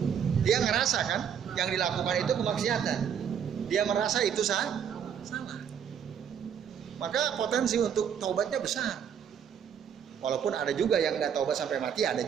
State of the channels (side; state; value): left; quieter; 8.1 dB